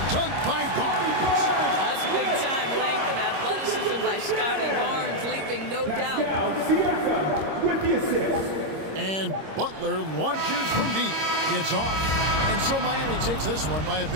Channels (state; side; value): late; left; 26 ms